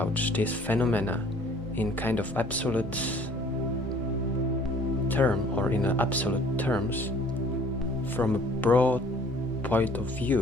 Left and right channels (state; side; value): normal; both; correlation 0.54